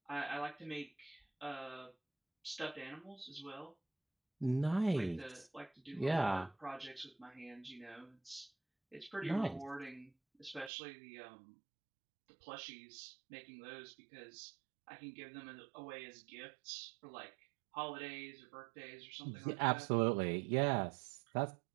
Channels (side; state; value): left; drops out; at 10.7 s